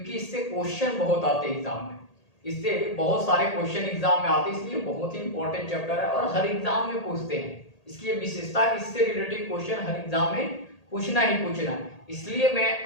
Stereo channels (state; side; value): late; right; 1.8 ms